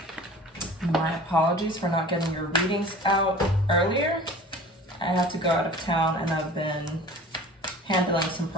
apologies for not getting your readings out earlier. I had to go out of town and I've been handling some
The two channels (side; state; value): both; normal; correlation 0.42